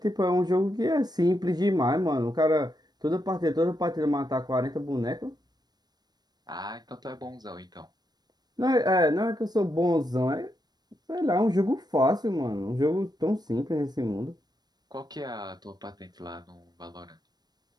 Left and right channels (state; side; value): late; left; 0.19 ms